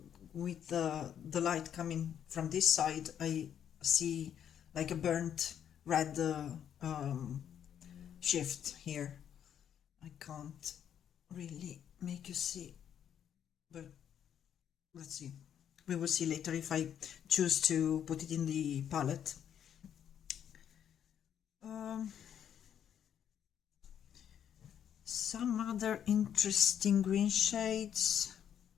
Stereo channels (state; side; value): quieter; right; 9.2 dB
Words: with the light coming from this side, I see like a burnt red shift here. I can't really make you see, but let's see. We will see later if I choose to put it in the palette. Some other interesting green shades.